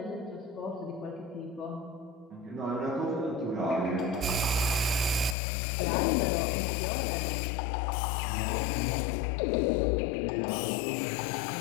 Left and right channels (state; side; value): drops out; right; at 5.4 s